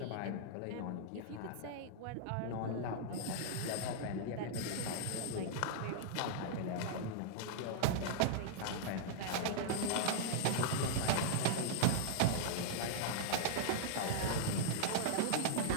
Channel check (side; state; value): both; different; correlation -0.01